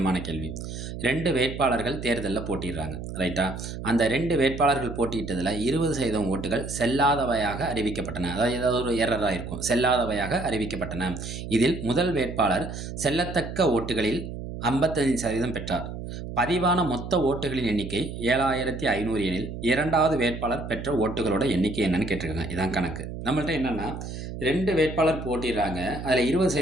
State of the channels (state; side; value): noise; right; hum, 8 dB below the sound